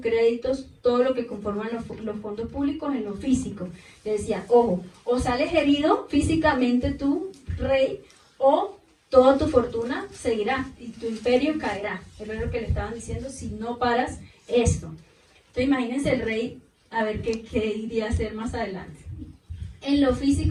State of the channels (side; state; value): both; identical; correlation 1.00